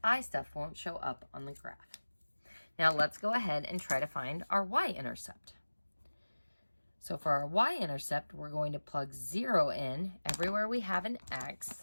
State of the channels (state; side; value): inverted; both; correlation -1.00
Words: I stuff won't show up on the graph. Now let's go ahead and try to find our y-intercept. So for our y-intercept, we're going to plug 0 in everywhere we have an x.